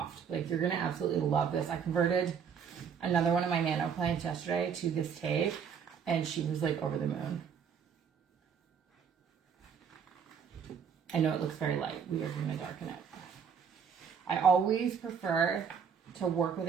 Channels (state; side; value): quieter; left; 7.0 dB